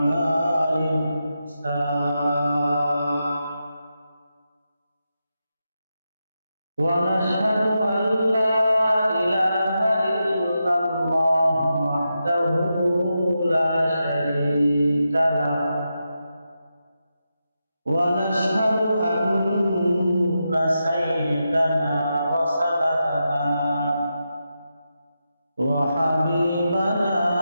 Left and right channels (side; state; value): both; inverted; correlation -0.88